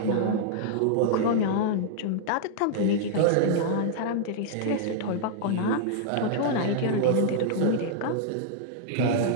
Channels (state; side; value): different; both; correlation -0.01